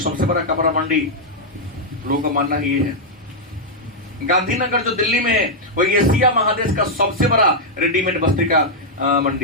बड़ा कपड़ा मंडी, लोगों का मानना ही ये है। गांधीनगर जो दिल्ली में है वो एशिया महादेश का सबसे बड़ा रेडीमेड वस्त्र का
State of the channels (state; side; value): normal; both; correlation -0.04